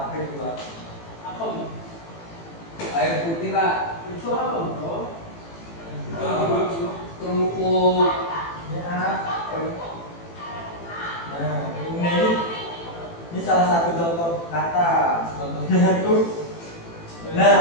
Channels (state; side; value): late; right; 18 ms